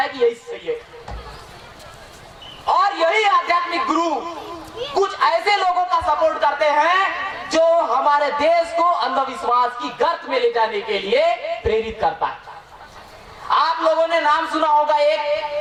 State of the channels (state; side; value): identical; both; correlation 1.00